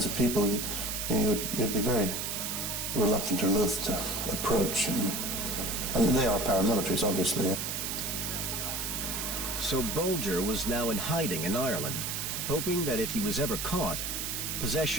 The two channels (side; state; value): right; noise; hiss, 3 dB below the sound